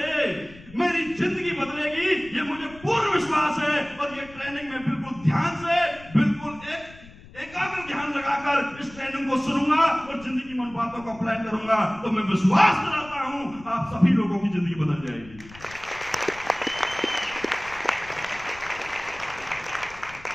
मेरी जिंदगी बदलेगी, ये मुझे पूर्ण विश्वास है, और ये ट्रेनिंग में बिल्कुल ध्यान से, बिल्कुल एकाग्र ध्यान लगाकर इस ट्रेनिंग को सुनूंगा और जिंदगी में उन बातों को अप्लाई करूंगा, तो मैं विश्वास कराता हूं आप सभी लोगों की जिंदगी बदल जाएगी।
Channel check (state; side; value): noise; left; rumble, 20 dB below the sound